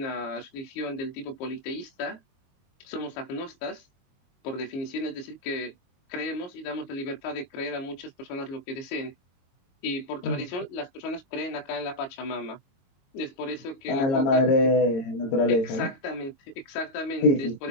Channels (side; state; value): right; late; 22 ms